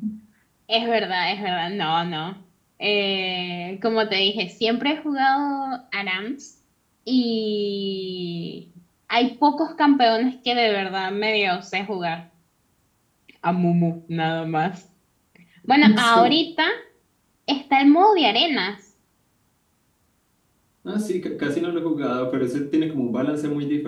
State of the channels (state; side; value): identical; both; correlation 1.00